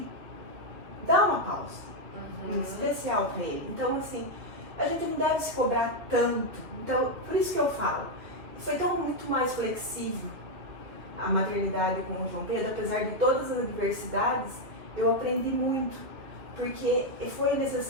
dar uma pausa, especial para ele. Então, assim, a gente não deve se cobrar tanto. Então, por isso que eu falo, foi tão muito mais flexível a maternidade com o João Pedro, apesar de todas as adversidades, eu aprendi muito, porque foi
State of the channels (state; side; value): late; left; 3.1 ms